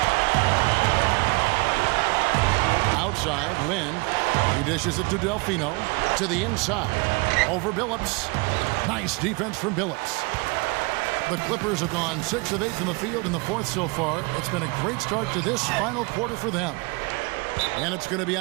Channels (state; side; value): quieter; left; 27.9 dB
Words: Outside, Lynn. He dishes it to Delfino. To the inside. Over Billups. Nice defense from Billups. The Clippers have gone 6 of 8 from the field in the 4th so far. It's been a great start to this final quarter for them. And it's going to be